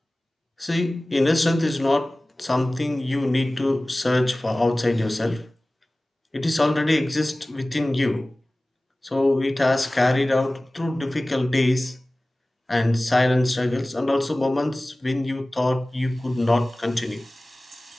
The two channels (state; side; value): normal; both; correlation 0.98